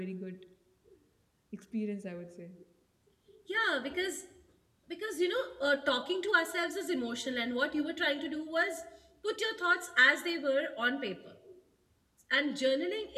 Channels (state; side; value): identical; both; correlation 1.00